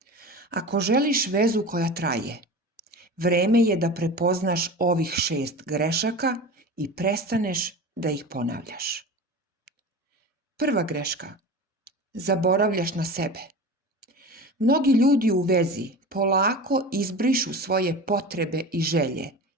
Ako želiš vezu koja traje, vreme je da prepoznaš ovih 6 grešaka i prestaneš da ih ponavljaš. Prva greška. Zaboravljaš na sebe. Mnogi ljudi u vezi polako izbrišu svoje potrebe i želje,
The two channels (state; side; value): normal; both; correlation 0.32